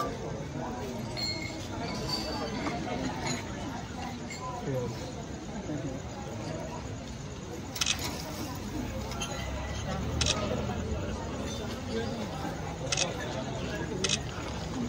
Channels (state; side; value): identical; both; correlation 1.00